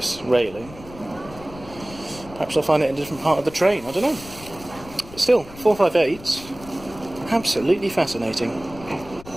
railing. Perhaps I'll find it in a different part of the train, I don't know. But still, 458's absolutely fascinating.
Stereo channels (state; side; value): noise; left; rumble, 18 dB below the sound